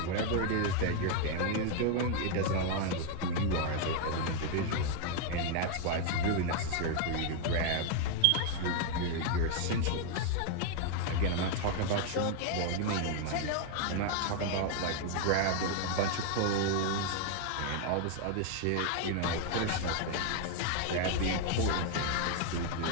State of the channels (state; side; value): different; both; correlation 0.00